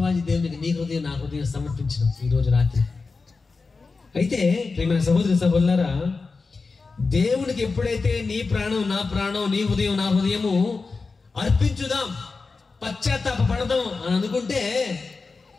దేవునికి నీ హృదయం నా హృదయం సమర్పించడం ఈ రోజు రాత్రి. అయితే ప్రియమైన సహోదరులారా, దేవునికి ఎప్పుడైతే నీ ప్రాణం నా ప్రాణం, నీ హృదయం నా హృదయము అర్పించుదాం, పశ్చాత్తాప పడదాం అని అనుకుంటే,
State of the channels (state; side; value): quieter; right; 4.2 dB